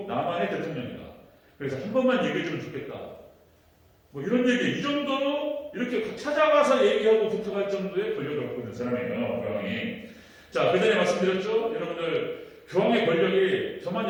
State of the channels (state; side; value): identical; both; correlation 1.00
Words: 남한의 대통령이다. 그래서 한 번만 얘기해주면 좋겠다. 뭐 이런 얘기 이 정도로 이렇게 찾아가서 얘기하고 부탁할 정도의 권력을 갖고 있는 사람이에요. 교황이. 자, 그 전에 말씀드렸죠? 여러분들 교황의 권력이